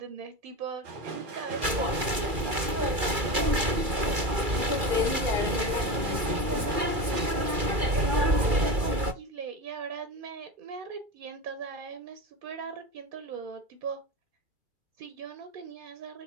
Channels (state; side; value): late; left; 2.3 ms